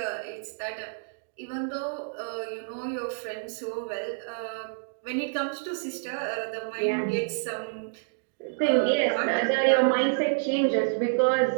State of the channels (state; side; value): silent; left; digital silence